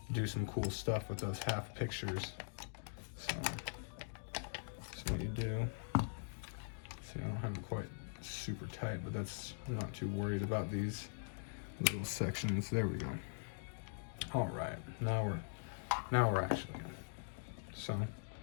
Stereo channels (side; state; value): right; silent; digital silence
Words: do some cool stuff with those half pictures. So what you do, see, I don't have it quite super tight, but I'm not too worried about these little sections. There we go. All right, now we're actually good. So